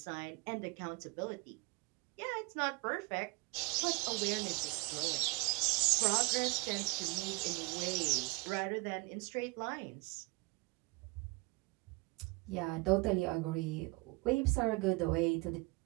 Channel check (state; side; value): quieter; left; 27.0 dB